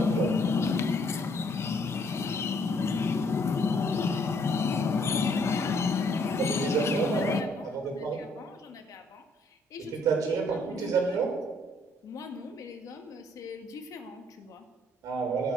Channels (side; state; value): both; normal; correlation 0.66